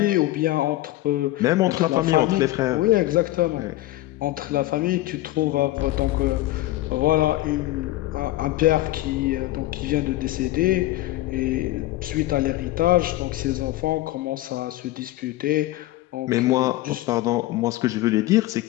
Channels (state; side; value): quieter; right; 16.5 dB